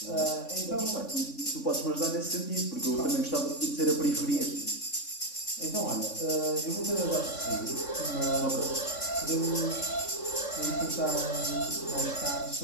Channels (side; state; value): right; late; 3.5 ms